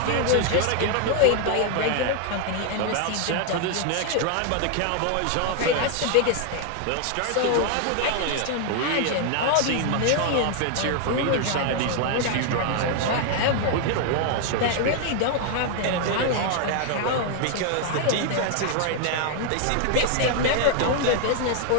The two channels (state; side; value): different; both; correlation 0.00